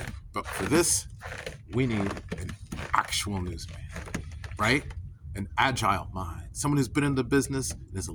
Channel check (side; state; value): both; identical; correlation 1.00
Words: But for this, we need an actual newsman, right? An agile mind, someone who's been in the business and is a